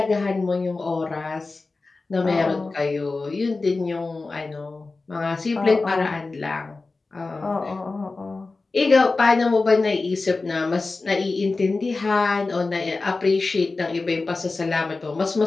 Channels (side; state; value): right; quieter; 3.7 dB